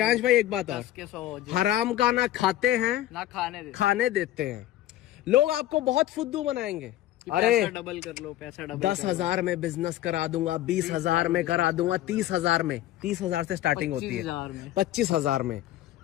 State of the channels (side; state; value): right; quieter; 13.9 dB